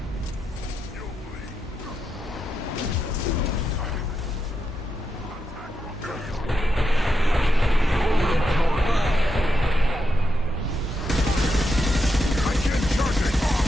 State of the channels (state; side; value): normal; both; correlation 0.85